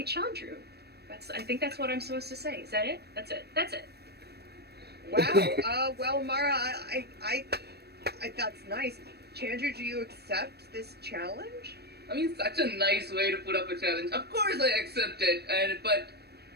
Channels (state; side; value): late; left; 0.47 ms